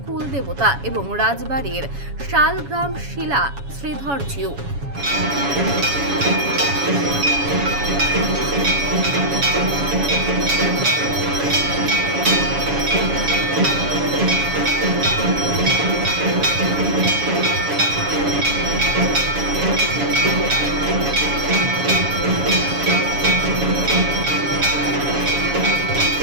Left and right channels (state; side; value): late; left; 7.1 ms